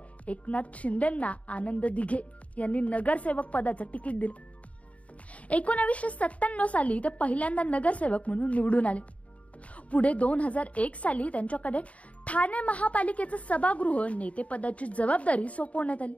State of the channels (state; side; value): late; right; 0.066 ms